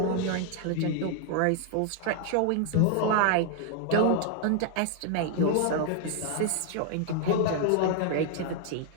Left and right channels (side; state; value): both; different; correlation 0.00